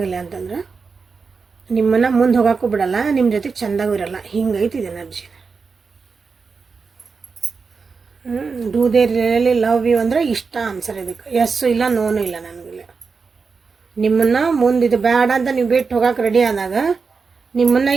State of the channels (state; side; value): quieter; left; 4.9 dB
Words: ಅಂತಂದ್ರೆ ನಿಮ್ಮನ್ನು ಮುಂದೆ ಹೋಗೋಕ್ಕೂ ಬಿಡಲ್ಲ, ನಿಮ್ಮ ಜೊತೆಗೆ ಚೆಂದಾಗೂ ಇರಲ್ಲ, ಹಿಂಗೈತಿ ಇದು energy. Do they really love you ಅಂದರೆ ಇಷ್ಟ ಆನ್ಸರ್ ಇದಕ್ಕೆ, ಎಸ್ಸು ಇಲ್ಲ ನೋನು ಇಲ್ಲ ನನಗಿಲ್ಲ. ನಿಮ್ಮನ್ನು ಮುಂದೆ ಇದು ಬೇಡ ಅಂತ ನೀವು ಬಿಟ್ಟು ಹೋಗೋಕೆ ರೆಡಿ ಆದಾಗ, ನಿಮ್ಮನ್ನು